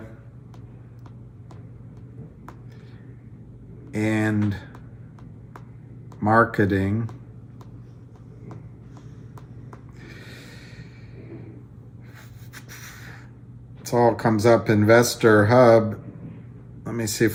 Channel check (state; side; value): identical; both; correlation 1.00